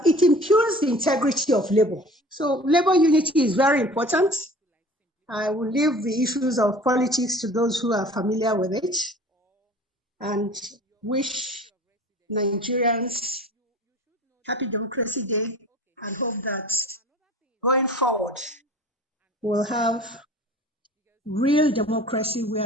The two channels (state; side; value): normal; both; correlation 0.44